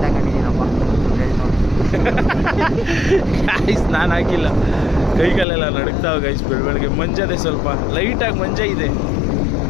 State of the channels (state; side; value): drops out; right; at 5.5 s